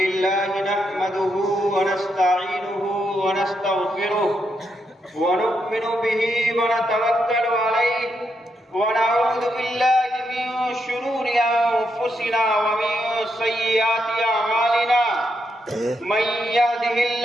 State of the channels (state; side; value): normal; both; correlation 0.81